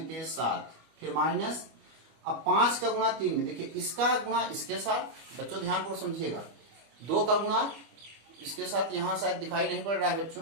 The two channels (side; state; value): left; late; 25 ms